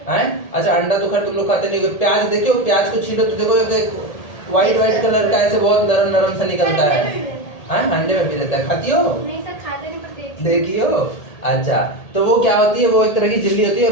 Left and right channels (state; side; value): late; right; 1.8 ms